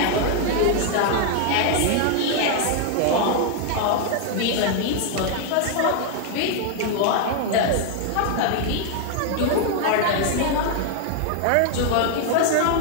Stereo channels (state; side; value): different; both; correlation 0.00